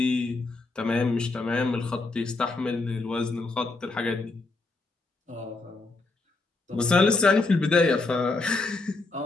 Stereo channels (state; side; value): quieter; right; 3.4 dB